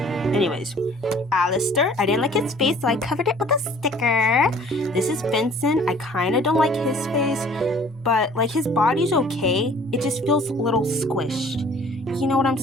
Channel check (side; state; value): both; normal; correlation 0.52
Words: Anyways, Alistair. I didn't like his face, so I covered it with a sticker. This is Vincent. I kind of don't like his face, but like his body's okay. It just feels a little squished. You know what I'm